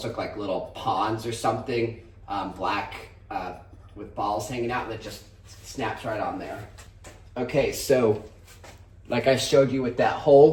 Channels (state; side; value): identical; both; correlation 1.00